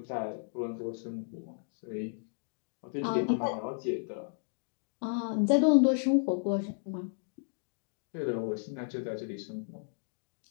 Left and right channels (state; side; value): silent; right; digital silence